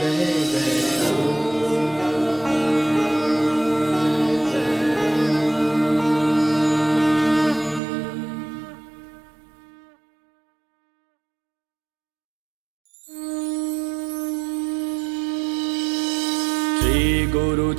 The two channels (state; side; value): drops out; left; at 7.8 s